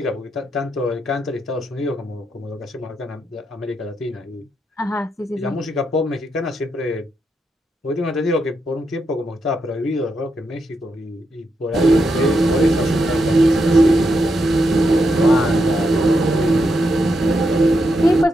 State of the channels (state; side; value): normal; both; correlation 0.82